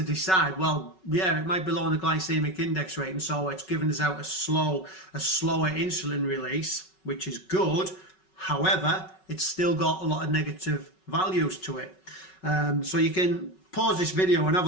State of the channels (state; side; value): late; right; 5.4 ms